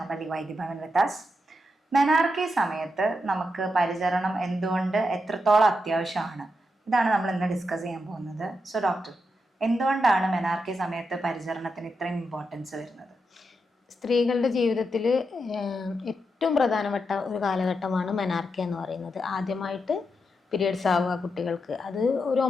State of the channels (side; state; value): both; normal; correlation 0.85